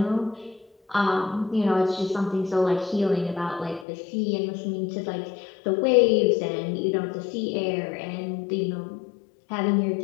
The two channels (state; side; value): drops out; right; at 3.9 s